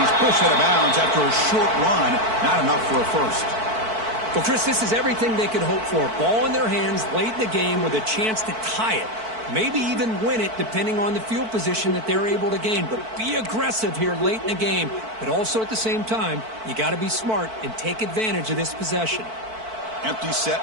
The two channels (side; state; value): left; late; 4.5 ms